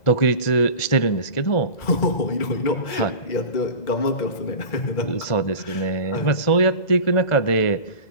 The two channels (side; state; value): right; late; 2.0 ms